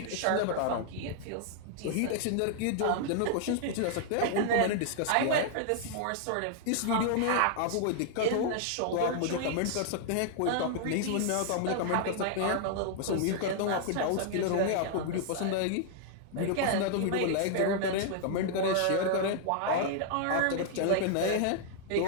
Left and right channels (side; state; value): both; different; correlation -0.01